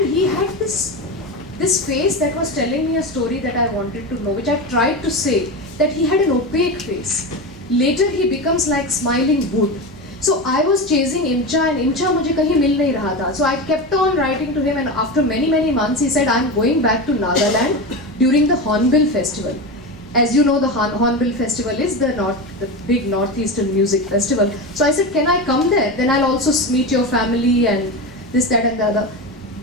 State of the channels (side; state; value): both; normal; correlation 0.21